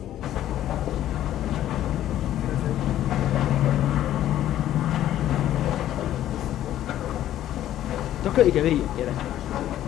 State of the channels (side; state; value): right; quieter; 12.4 dB